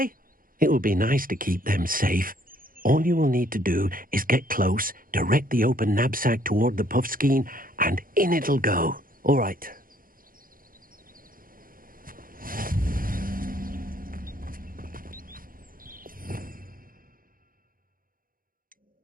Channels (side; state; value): left; late; 0.41 ms